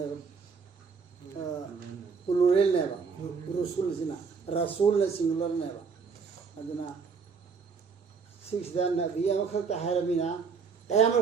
प्लूरल ने बा रसूल सिना रसूल ने सिंगुलर ने बा अदना सिक्स द नबी अमखत हायरमिना कयामल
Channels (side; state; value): left; quieter; 5.4 dB